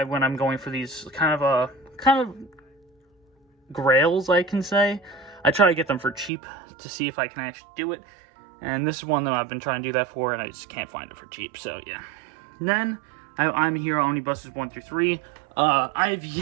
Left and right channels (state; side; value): drops out; left; at 6.3 s